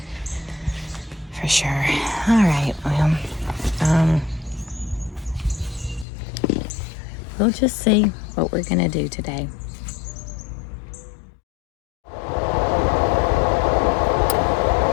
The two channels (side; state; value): right; drops out; at 6.1 s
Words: For sure. All right, well, we'll just see what we're gonna do today.